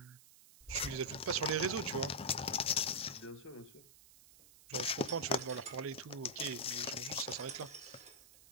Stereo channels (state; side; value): noise; right; hiss, 22 dB below the sound